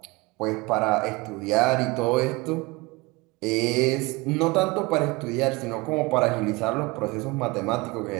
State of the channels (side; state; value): left; quieter; 23.8 dB